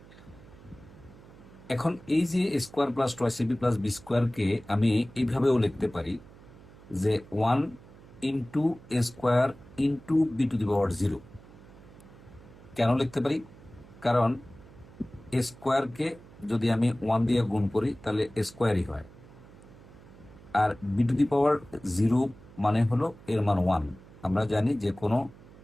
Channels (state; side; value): noise; right; hum, 21 dB below the sound